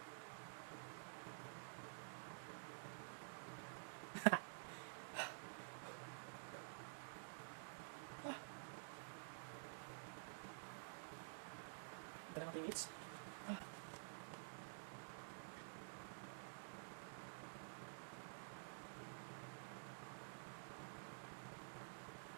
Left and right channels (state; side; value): silent; left; digital silence